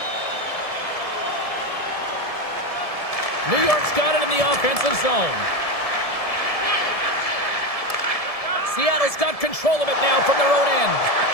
New York's got it in the offensive zone. Seattle's got control of it now from their own end.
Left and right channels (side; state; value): right; late; 1.7 ms